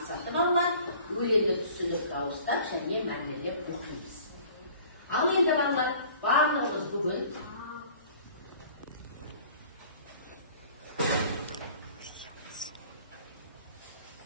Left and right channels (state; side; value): inverted; both; correlation -0.50